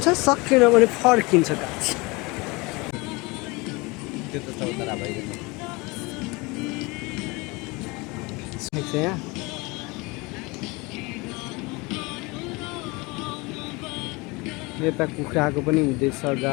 सकेन भने फर्किन्छ गाइस। त्यो त चौतारा भइरहेको यहाँ यता कुखुराको पनि हुँदैछ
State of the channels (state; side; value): quieter; right; 25.4 dB